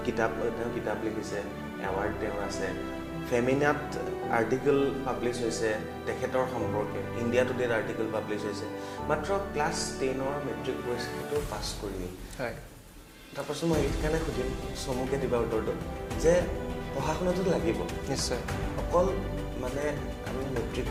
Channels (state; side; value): identical; both; correlation 1.00